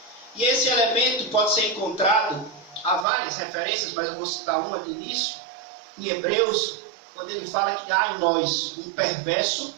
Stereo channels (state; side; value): drops out; left; at 3.1 s